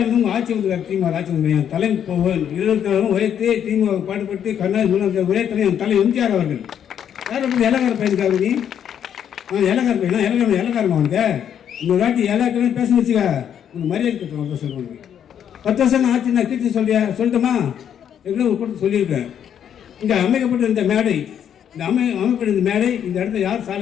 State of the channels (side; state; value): right; quieter; 9.1 dB